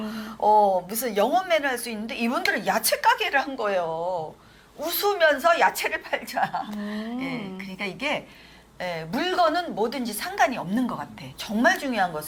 무슨 영업맨을 할 수 있는데 이분들은 야채 가게를 한 거예요. 웃으면서 야채를 팔자. 예, 그러니까 이게 물건은 뭐든지 상관이 없는 것 같아. 정말 중요한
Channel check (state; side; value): identical; both; correlation 1.00